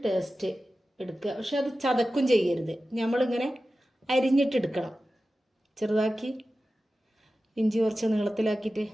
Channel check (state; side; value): normal; both; correlation 0.94